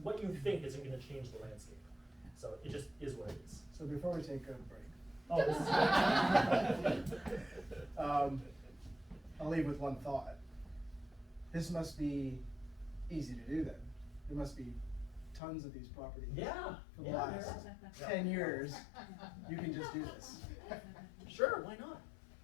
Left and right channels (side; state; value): right; drops out; at 15.4 s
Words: you think isn't going to change the landscape. So it just is what it is. So before we take a break, oh, this is I'll leave with one thought. This must be easy to do then. There must be tons of these properties. Yeah. For the last 10 years, you can just do this. Sure, why not?